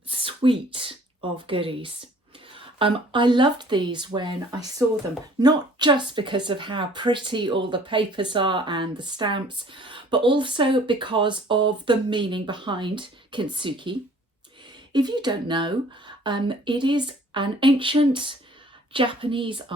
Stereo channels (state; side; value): normal; both; correlation 0.54